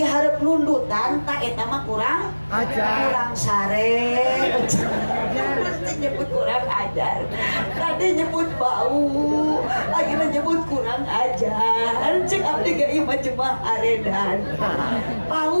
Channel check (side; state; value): both; inverted; correlation -1.00